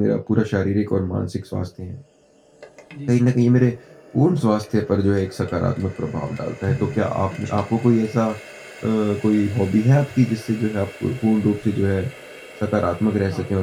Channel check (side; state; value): both; identical; correlation 1.00